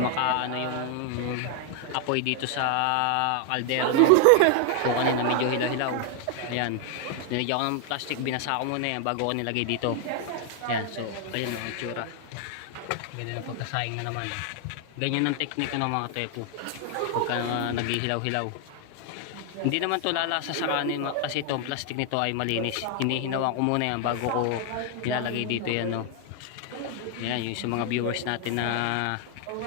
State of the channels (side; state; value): both; different; correlation 0.00